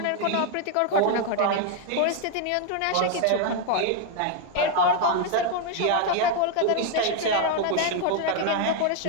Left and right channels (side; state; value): both; different; correlation 0.01